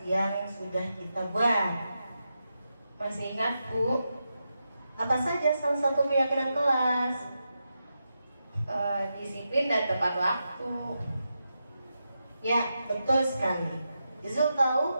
yang sudah kita buat? Masih ingat, Bu. Apa saja salah satu keyakinan kelas? Disiplin dan tepat waktu. Ya, betul sekali. Izul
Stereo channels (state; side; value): inverted; both; correlation -0.87